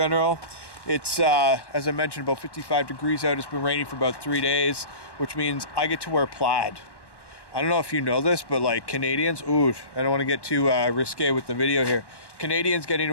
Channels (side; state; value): right; late; 1.1 ms